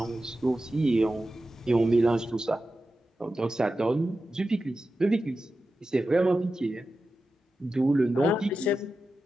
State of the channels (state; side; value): normal; both; correlation 0.92